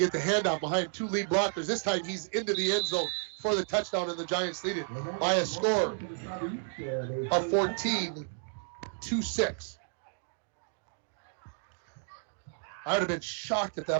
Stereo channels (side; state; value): left; silent; digital silence